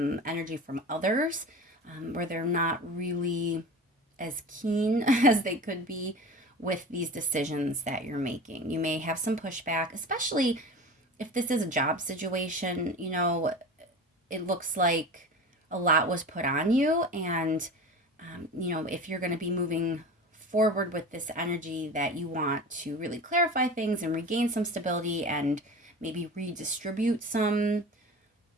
energy from others where they're not really as keen as they could be with these decisions that you're making. You may have some pushback, especially if this is a job situation. It looks like a lot was put on you, and if you're going to be moving forward with this energy that you want to really clarify things and regain some stability and maybe redistribute some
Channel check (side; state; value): both; normal; correlation 0.33